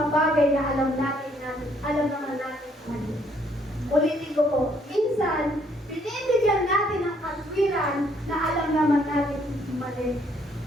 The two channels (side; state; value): both; normal; correlation 0.67